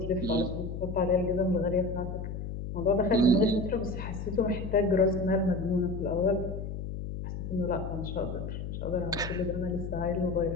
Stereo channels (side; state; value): left; noise; hum, 6 dB below the sound